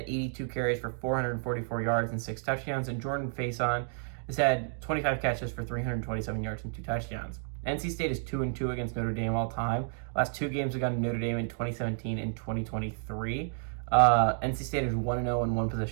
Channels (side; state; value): left; silent; 57 dB below the other